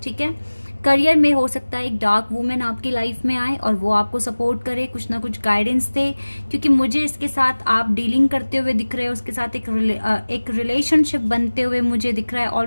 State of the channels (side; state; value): both; inverted; correlation -1.00